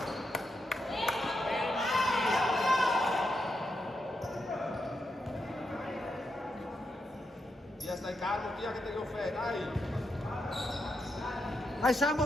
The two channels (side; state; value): both; normal; correlation 0.83